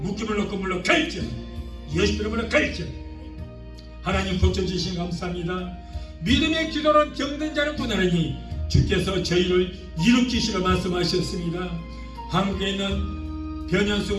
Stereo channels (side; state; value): both; identical; correlation 1.00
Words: 묶임을 놓고 물러 갈지어다. 예수 이름으로 갈지어다. 하나님 고쳐주신 감사합니다. 믿음의 기도로 병든 자를 구하느니 주께서 저희를 일으키시라 말씀하셨습니다. 한국에 있는